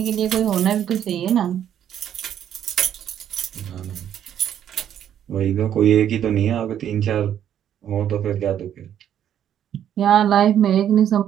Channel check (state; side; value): quieter; left; 10.0 dB